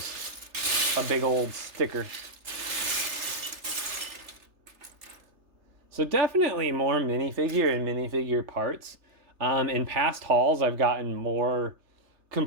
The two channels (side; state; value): left; late; 3.3 ms